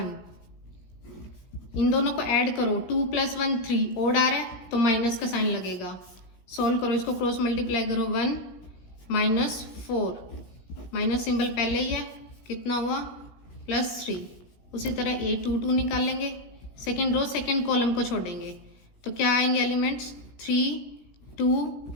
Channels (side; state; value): right; late; 17 ms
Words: इन दोनों को ऐड करो, 2 + 1 3, ओड आ रहा है तो माइनस का साइन लगेगा। सॉल्व करो, इसको क्रॉस मल्टीप्लाई करो, 1 -4, माइनस सिंबल पहले ही है, कितना हुआ +3। उसी तरह A22 निकाल लेंगे, सेकेंड रो सेकेंड कॉलम को छोड़ेंगे तो क्या आएंगे एलिमेंट्स, 3 2